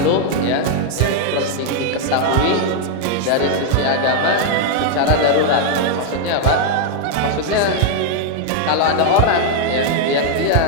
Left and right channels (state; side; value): different; both; correlation 0.00